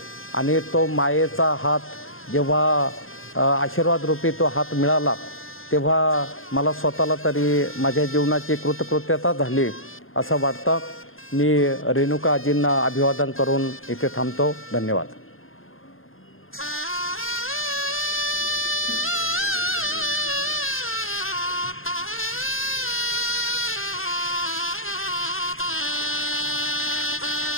आणि तो मायेचा हात जेव्हा आशीर्वाद रूपी तो हात मिळाला तेव्हा मला स्वतःला तरी माझ्या जीवनाची कृतकृत्यता झाली असं वाटतं। मी रेणुका आजींना अभिवादन करून इथे थांबतो। धन्यवाद।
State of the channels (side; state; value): right; late; 0.60 ms